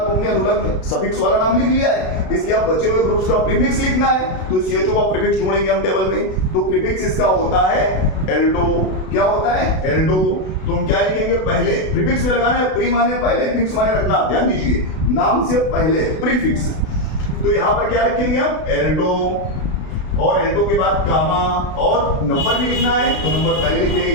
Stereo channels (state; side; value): late; right; 32 ms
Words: हमने अनुलग्न सफिक्स वाला नाम लिख लिया है, इसलिए अब बचे हुए ग्रुप्स का प्रीफिक्स लिखना है, तो CHO का प्रीफिक्स ढूंढेंगे हम टेबल में। तो प्रीफिक्स इसका होता है एल्डो। क्या होता है? एल्डो। तो हम क्या लिखेंगे? पहले प्रीफिक्स में लगाना है, प्री माने पहले, फिक्स माने रखना। ध्यान दीजिए, नाम से पहले प्रीफिक्स, तो यहां पर क्या रखेंगे हम? एल्डो। और एल्डो के बाद कामा, और नंबर भी लिखना है, तो नंबर पहले लिख देंगे।